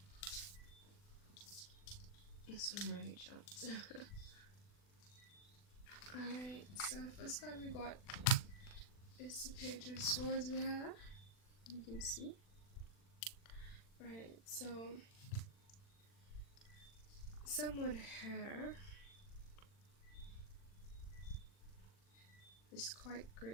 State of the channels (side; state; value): right; late; 40 ms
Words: This one really jumped. Alright, so first card we got is the Page of Swords we have. You can see. Right, so someone here is quite